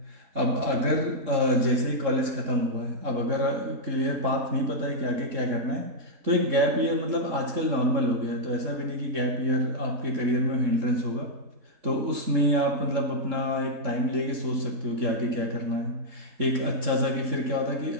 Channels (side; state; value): left; late; 3.7 ms